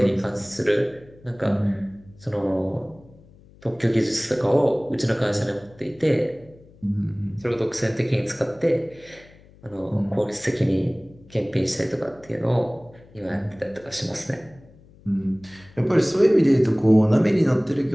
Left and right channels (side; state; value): left; noise; hum, 25 dB below the sound